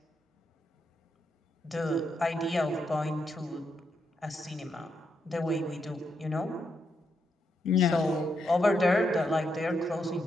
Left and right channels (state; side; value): normal; both; correlation 0.81